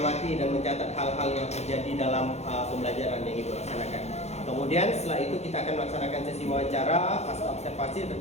dan mencatat hal-hal yang terjadi dalam pembelajaran yang Ibu laksanakan. Kemudian setelah itu kita akan melaksanakan sesi wawancara pasca observasi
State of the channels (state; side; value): late; right; 0.32 ms